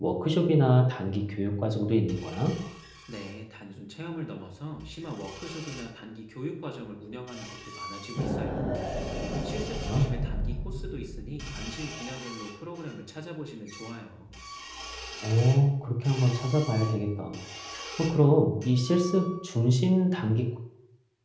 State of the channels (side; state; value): both; identical; correlation 1.00